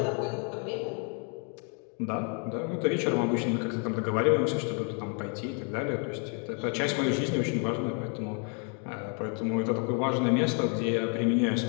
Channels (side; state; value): right; quieter; 39.6 dB